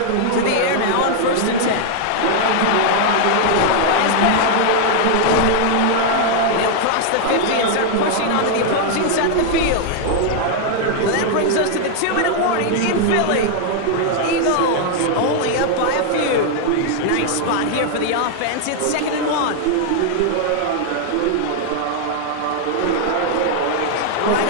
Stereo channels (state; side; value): different; both; correlation 0.00